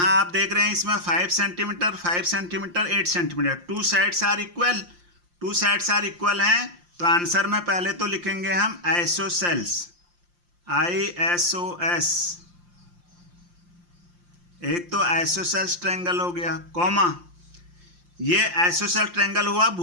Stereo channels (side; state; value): left; late; 5.7 ms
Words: आप देख रहे हैं इसमें 5 centimetre 5 centimetre 8 centimetre. Two sides are equal. Two sides are equal हैं तो आंसर में पहले तो लिखेंगे हम आइसोसेल्स. ISOS. एक तो आइसोसेल्स ट्रायंगल हो गया कॉमा. ये आइसोसेल ट्रायंगल हुआ